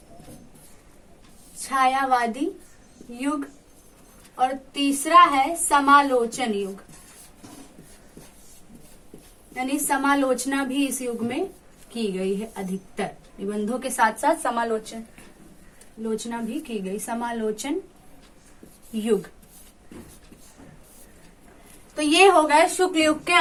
छायावादी युग। और तीसरा है समालोचन युग, यानी समालोचना भी इस युग में की गई है। अधिकतर निबंधों के साथ साथ समालोचना भी की गई। समालोचन युग। तो ये हो गए शुक्ल युग के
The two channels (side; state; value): both; identical; correlation 1.00